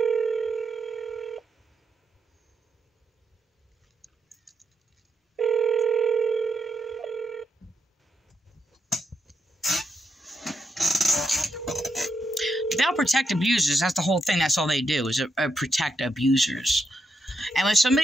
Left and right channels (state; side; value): normal; both; correlation 0.82